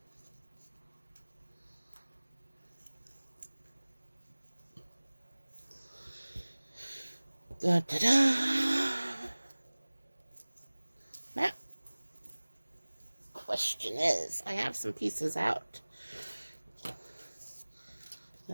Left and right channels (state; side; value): inverted; both; correlation -1.00